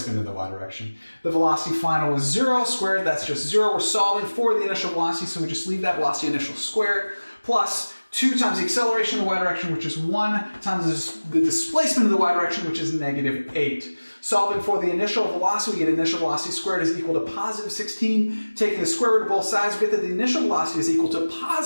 in the y direction. The velocity final is 0 squared, that's just 0. We're solving for the initial velocity, so we just leave that velocity initial squared, plus 2 times the acceleration in the y direction, which is 1, times the displacement in the y direction, which is negative 8. Solving for the initial velocity, we get initial velocity squared is equal to positive 16. Taking the square root of both sides, we get that the initial velocity is equal to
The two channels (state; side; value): inverted; both; correlation -1.00